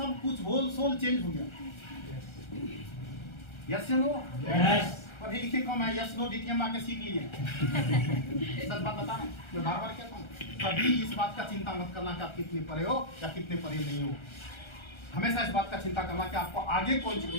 कुछ होल सोल चेंज हो गया। Yes no. Yes. पढ़े लिखे कम है, यस नो डीटीएम आके सीख लिए। सच बात बता रहा हूं, मैं बार बार कहता हूं, कभी इस बात का चिंता मत करना कि आप कितने पढ़े हो या कितने पढ़े नहीं हो। हमेशा इस बात का चिंता करना कि आपको आगे कौन चीज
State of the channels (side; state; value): right; late; 1.3 ms